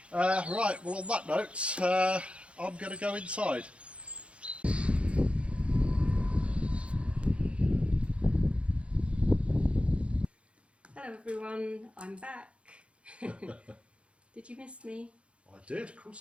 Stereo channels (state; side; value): late; left; 0.060 ms